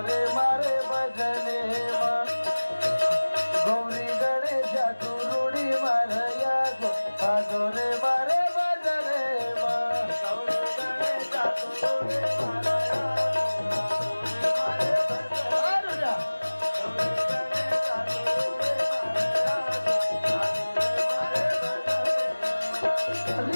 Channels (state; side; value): inverted; both; correlation -1.00